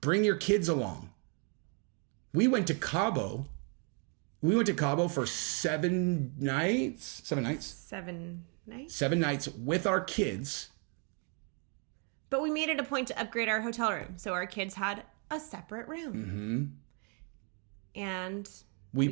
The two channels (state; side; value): quieter; left; 38.6 dB